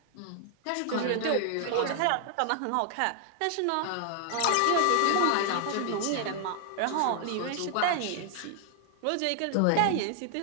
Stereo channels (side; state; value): both; different; correlation 0.00